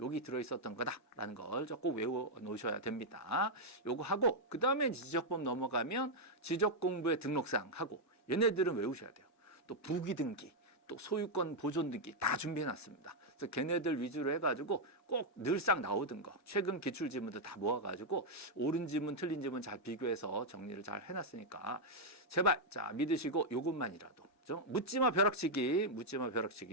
들어있었던 거다라는 걸 꼭 외워 놓으셔야 됩니다. 요거 하고, 그 다음에 지적법 넘어가면 지적공부의 등록사항 하고, 얘네들은 외우셔야 돼요. 또 부기등기, 또 소유권 보존 등기 다 준비해 놨습니다. 그래서 걔네들 위주로 해가지고 꼭 늘상 나오던 거, 최근 기출 지문들 다 모아가지고 옳은 지문, 틀린 지문 잘 비교해서 정리를 잘 해놨으니까 제발 믿으시고 요것만이라도 묻지마 벼락치기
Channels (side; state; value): both; normal; correlation -0.02